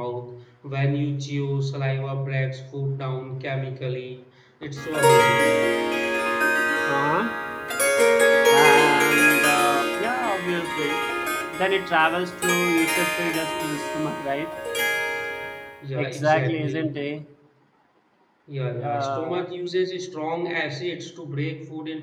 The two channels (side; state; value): both; identical; correlation 1.00